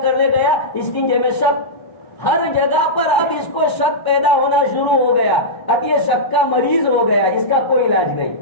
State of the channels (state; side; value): late; right; 1.0 ms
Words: کرنے گیا، استنجے میں شک، ہر جگہ پر اب اس کو شک پیدا ہونا شروع ہو گیا، اب یہ شک کا مریض ہو گیا، اس کا کوئی علاج نہیں۔